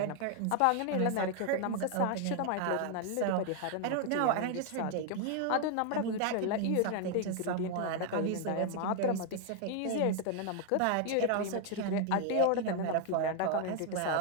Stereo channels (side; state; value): both; different; correlation 0.00